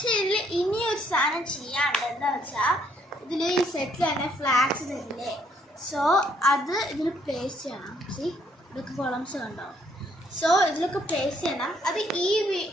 ഇതിൽ ഇനിയൊരു സാധനം ചെയ്യാണ്ട്. എന്താ വെച്ചാൽ ഇതിൽ ഈ സെറ്റിൽ തന്നെ ഫ്ലാഗ്സ് തരില്ലേ? സോ അത് ഇതിൽ പ്ലേസ് ചെയ്യണം. ഇതൊക്കെ കോളംസ് കണ്ടോ? സോ ഇതിലൊക്കെ പ്ലേസ് ചെയ്യണം. അത് ഈ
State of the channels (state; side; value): normal; both; correlation 0.68